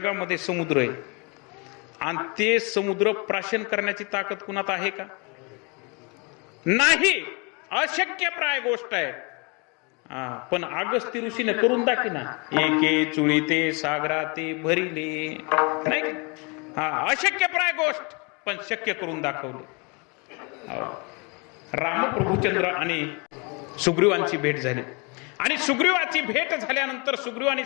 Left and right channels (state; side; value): quieter; right; 31.1 dB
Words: समुद्र आहे आणि ते समुद्र प्राशन करण्याची ताकद कुणात आहे का? नाही, अशक्यप्राय गोष्ट आहे. पण अगस्ती ऋषीने करून दाखिना, एके चुळीते सागरा ते भरिले, नाही का? अशक्यप्राय गोष्ट पण शक्य करून दाखवले. रामप्रभुचंद्र आणि सुग्रीवांची भेट झाली आणि सुग्रीवाची भेट झाल्यानंतर सुग्रीवाने